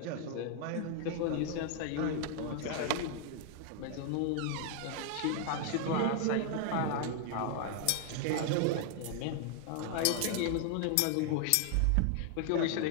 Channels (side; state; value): both; different; correlation 0.00